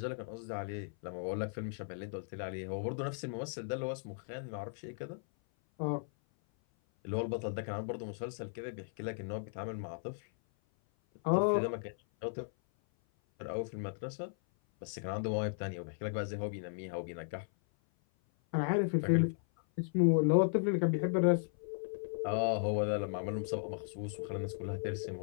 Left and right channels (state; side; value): silent; right; 54 dB below the other